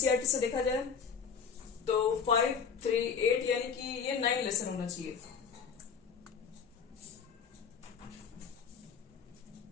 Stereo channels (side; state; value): right; quieter; 6.5 dB